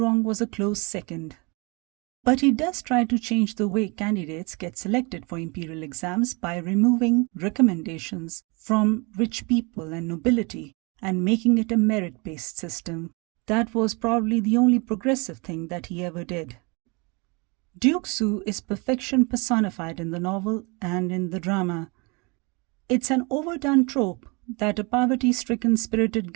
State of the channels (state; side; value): quieter; left; 29.4 dB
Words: was a close second. But he does try to change the way candidates get selected for imperial exams by removing recommendations from rich people and nobility and making it a merit-based system. That was probably the only progressive thing that he ever did. Duke Xue is perfection personified in the novel and in the drama. It's an overdone trope that a poverty-stricken spirited